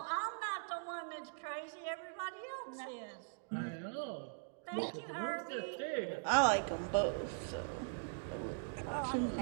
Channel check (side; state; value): left; silent; digital silence